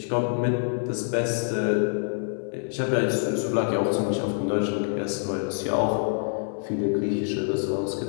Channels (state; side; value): silent; right; digital silence